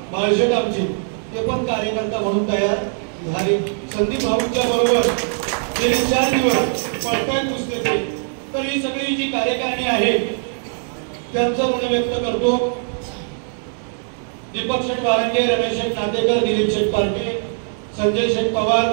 बाळशेट आमचे ते पण कार्यकर्ता म्हणून तयार झाले. संदीप भाऊंच्या बरोबर गेले 4 दिवस पळताय पुस्तके. तर ही सगळी जी कार्यकारिणी आहे त्यांचं ऋण व्यक्त करतो. दीपक शेठ वारंगे, रमेश शेठ नातेकर, दिलीप शेठ पार्टे, संजय शेठ पवार,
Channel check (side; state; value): left; silent; 65 dB below the other